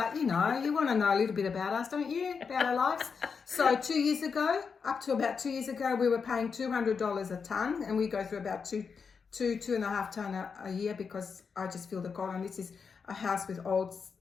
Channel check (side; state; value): right; quieter; 5.7 dB